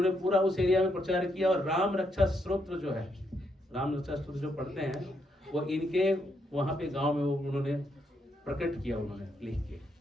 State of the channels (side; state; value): both; normal; correlation 0.77